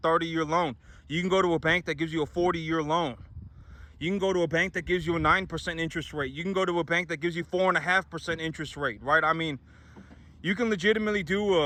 loan. You can go to a bank that gives you a 40-year loan. You can go to a bank that gives you a 9% interest rate. You can go to a bank that gives you 4.5% interest rate, right? I mean, you can legitimately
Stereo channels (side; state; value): both; identical; correlation 1.00